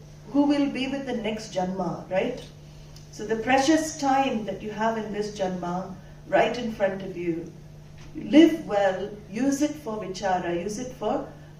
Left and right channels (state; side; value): identical; both; correlation 1.00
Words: who will be with the next Janma, right? So the precious time that you have in this Janma, right in front of you, live well, use it for vichara, use it for